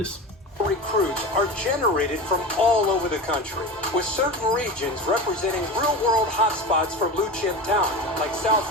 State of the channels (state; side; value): normal; both; correlation 0.28